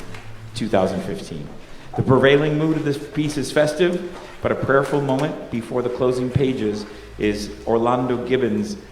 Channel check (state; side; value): identical; both; correlation 1.00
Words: 2015. The prevailing mood of this piece is festive, but a prayerful moment before the closing pages is Orlando Gibbons'